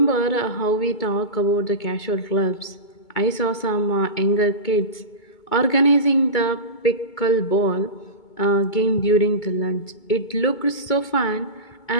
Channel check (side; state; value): right; late; 2.2 ms